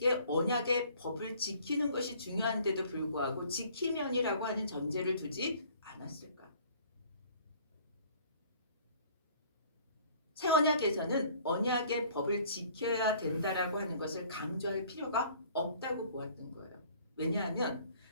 언약의 법을 지키는 것이 중요한데도 불구하고 지키면이라고 하는 전제를 두지 않았을까? 새 언약에서는 언약의 법을 지켜야 된다라고 하는 것을 강조할 필요가 없다고 보았던 거예요. 왜냐하면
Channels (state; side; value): inverted; both; correlation -0.55